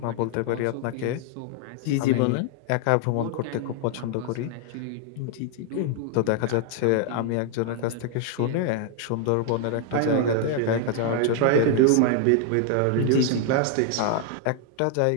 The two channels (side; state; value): both; different; correlation 0.00